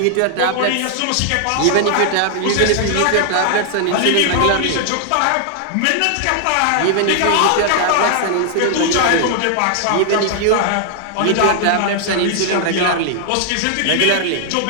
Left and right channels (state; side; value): different; both; correlation 0.00